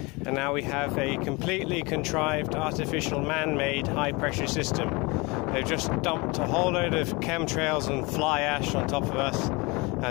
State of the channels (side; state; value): right; quieter; 26.1 dB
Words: now we have a completely contrived, artificial, man-made high-pressure system. They've just dumped a whole load of chemtrails and fly ash on top of us,